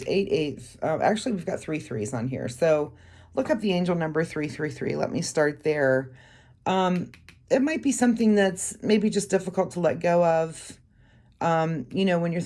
8 8. Actually, we've got 3 3s on here. So look up the angel number 333. Let me start there. It might be something that's maybe just difficult to let go of. When you're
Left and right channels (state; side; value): identical; both; correlation 1.00